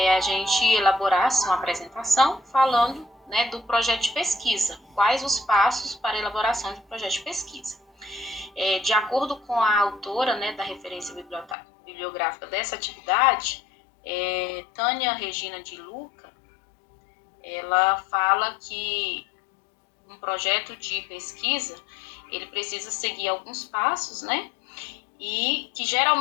a gente elaborasse uma apresentação falando do projeto de pesquisa, quais os passos para a elaboração de um projeto de pesquisa. De acordo com a autora da referência bibliográfica dessa atividade, Tânia Regina de Luca, ela fala que um projeto de pesquisa, ele precisa seguir alguns passos, e que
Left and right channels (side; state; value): right; drops out; at 11.6 s